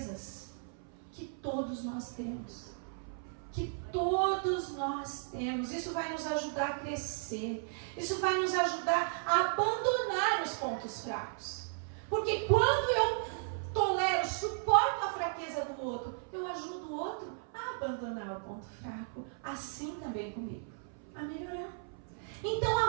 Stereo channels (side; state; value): left; silent; 54 dB below the other